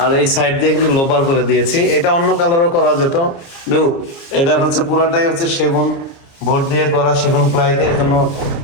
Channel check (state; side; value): late; right; 29 ms